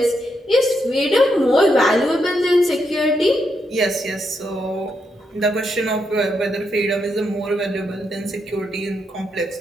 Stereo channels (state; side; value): normal; both; correlation 0.81